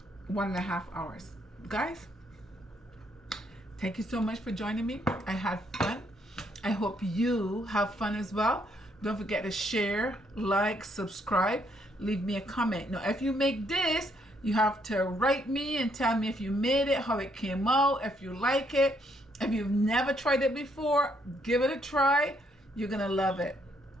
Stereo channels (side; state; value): both; normal; correlation 0.72